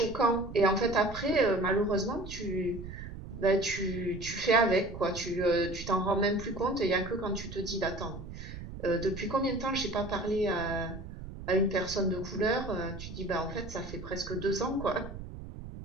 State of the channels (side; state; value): right; noise; rumble, 11 dB below the sound